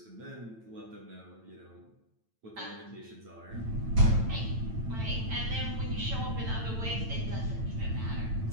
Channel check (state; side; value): late; left; 9.0 ms